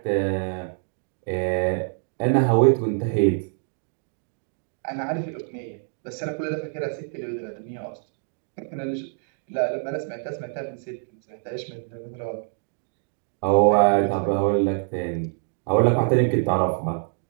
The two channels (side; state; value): left; silent; 61 dB below the other